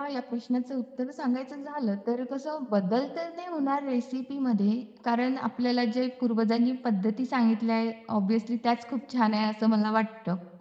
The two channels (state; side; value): identical; both; correlation 1.00